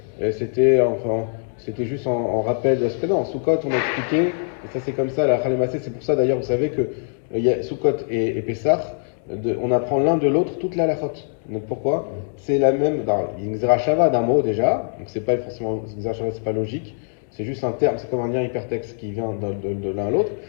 juste en rappel de ce que non, Sukkot on a expliqué, et ça c'est comme ça, la Khalemassé, c'est pour ça d'ailleurs vous savez que il y a Sukkot et Pessah, on apprend l'un de l'autre toute la halachot. Donc pourquoi? C'est la même, il y a une Xerashava d'un mot déjà, donc c'est pas forcément, Xerashava c'est pas logique, c'est juste un terme, c'est comme un lien hypertexte qui vient de l'un à l'autre,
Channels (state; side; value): silent; right; digital silence